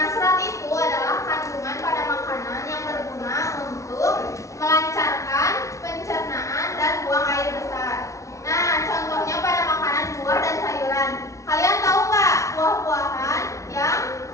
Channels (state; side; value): late; right; 0.15 ms